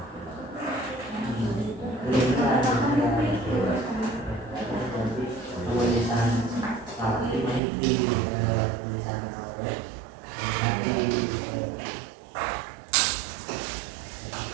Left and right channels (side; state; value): left; drops out; at 7.6 s